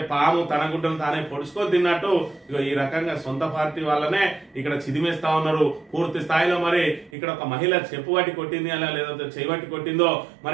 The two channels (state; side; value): drops out; left; at 7.1 s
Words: పాము తన గుడ్డను తానే పొడుచుకొని తిన్నట్టు ఈ రకంగా సొంత పార్టీ వాళ్ళనే ఇక్కడ చిదిమేస్తా ఉన్నారు పూర్తి స్థాయిలో. మరి ఇక్కడ ఒక మహిళ చెప్పు పట్టి కొట్టింది అలా లేదంటే చేయబట్టి కొట్టిందో